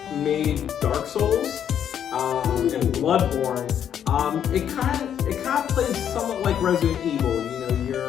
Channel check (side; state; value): right; quieter; 9.2 dB